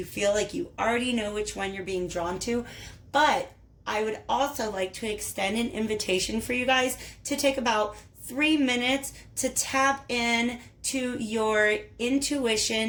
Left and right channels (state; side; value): identical; both; correlation 1.00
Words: feel like you already know which one you're being drawn to. But I would also like to extend an invitation for you guys to take about 3 minutes to tap in to your